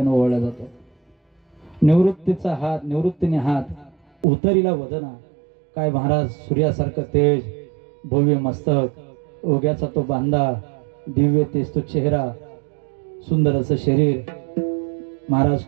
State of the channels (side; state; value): left; drops out; at 4.2 s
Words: ओवळला जातो. निवृत्तीचा हात, निवृत्तीने हात, उतरीला वदना. काय महाराज सूर्यासारखं तेज, भव्य मस्तक, ओग्याचा तो बांधा, दिव्य तेज तो चेहरा, सुंदर असं शरीर, महाराज